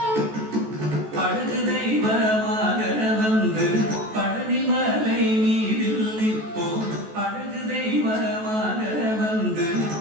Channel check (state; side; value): late; left; 14 ms